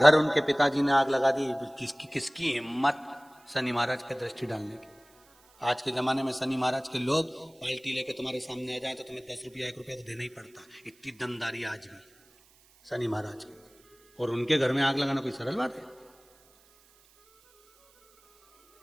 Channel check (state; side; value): noise; right; hiss, 30 dB below the sound